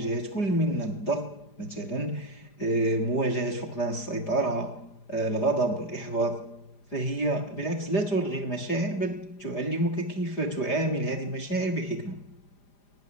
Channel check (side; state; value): right; late; 5.0 ms